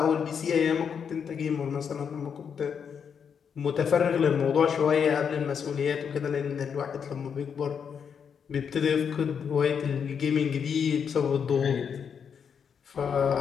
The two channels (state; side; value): quieter; right; 7.0 dB